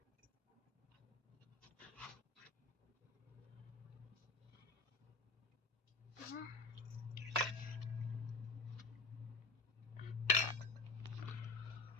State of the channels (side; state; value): right; quieter; 3.5 dB